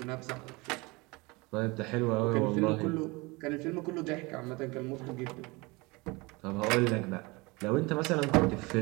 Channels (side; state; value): left; quieter; 25.0 dB